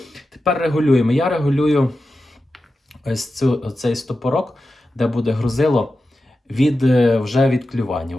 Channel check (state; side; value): normal; both; correlation 0.92